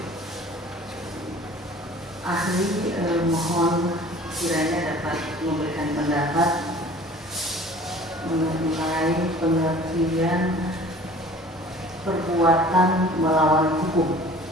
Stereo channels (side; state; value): both; normal; correlation 0.47